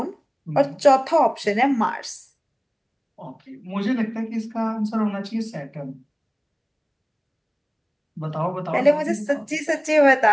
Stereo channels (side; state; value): both; identical; correlation 1.00